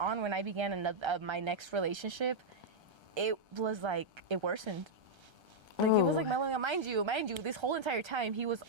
when I began my next relationship, it was like it worsened. Like it was like mellowing out. Mind you, this whole entire time he was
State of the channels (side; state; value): left; late; 1.3 ms